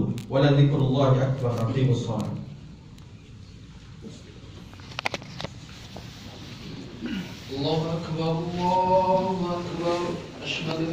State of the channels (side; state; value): both; identical; correlation 1.00